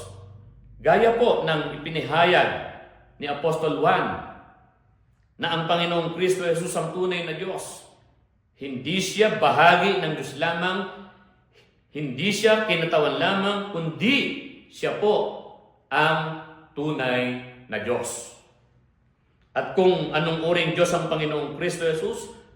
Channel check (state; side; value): identical; both; correlation 1.00